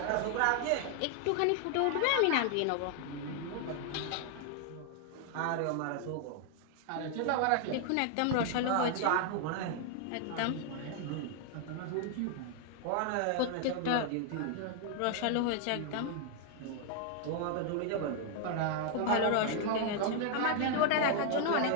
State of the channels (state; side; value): different; both; correlation 0.00